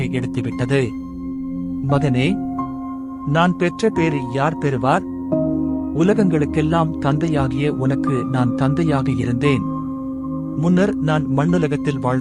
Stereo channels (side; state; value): both; identical; correlation 1.00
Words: எடுத்துவிட்டது. மகனே, நான் பெற்ற பேரை யார் பெறுவார்? உலகங்களுக்கெல்லாம் தந்தையாகிய உனக்கு நான் தந்தையாக இருந்தேன். முன்னர் நான் மண்ணுலகத்தில்